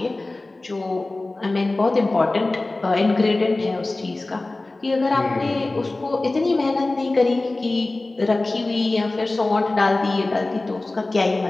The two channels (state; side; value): quieter; right; 3.0 dB